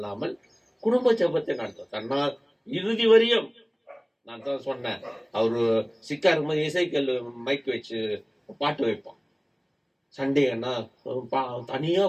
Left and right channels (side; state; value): both; identical; correlation 1.00